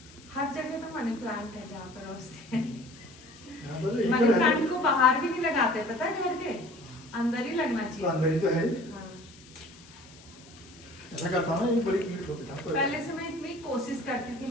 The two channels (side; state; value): left; noise; hiss, 22 dB below the sound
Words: हर जगह तो मनी प्लांट है जहाँ पर रोजते हैं। मनी मनी प्लांट को बाहर भी नहीं लगाते, पता है, घर के अंदर ही लगना चाहिए। अंदर ही तो है। हाँ। ऐसा करता ना, एक बड़ी कीट होती था। पहले से मैं इतनी कोशिश करती थी